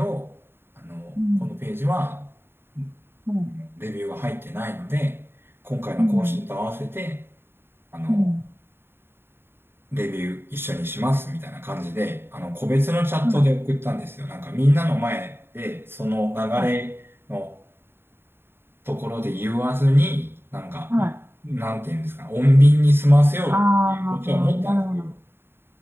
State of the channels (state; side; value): late; left; 0.11 ms